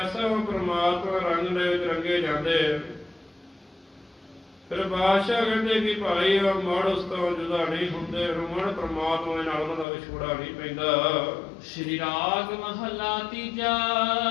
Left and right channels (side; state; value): right; drops out; at 9.9 s